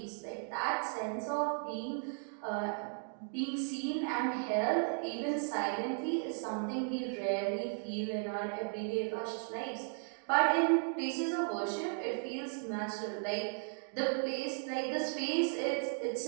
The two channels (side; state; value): left; silent; 54 dB below the other